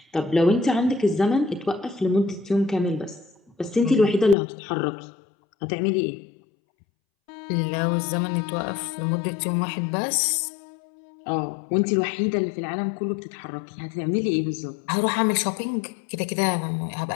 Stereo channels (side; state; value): right; drops out; at 4.4 s